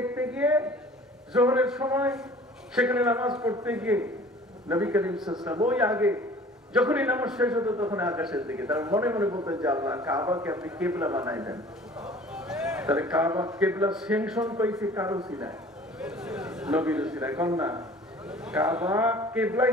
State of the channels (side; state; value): both; normal; correlation 0.47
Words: গিয়ে জোহরের সময় সেখানে নামাজ পড়তে গিয়ে নবী করিম সাল্লাল্লাহু আলাইহি ওয়াসাল্লাম ওই আগে যখন এই নামাজ শেষ হতো তখন আকাশের দিকে, তার মনে মনে বলতেন যে আল্লাহ কাবাকে আপনি কিবলা বানাইলেন। তাহলে কাবা কিবলা সেনশন পাইছে কারো সিনায়, নবীর সিনায়, কোন না? কাবা কিবলা